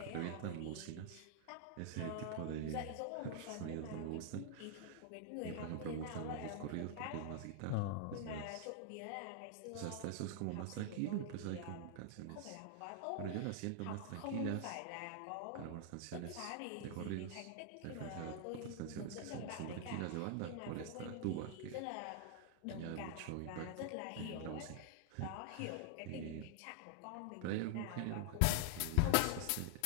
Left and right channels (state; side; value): different; both; correlation 0.00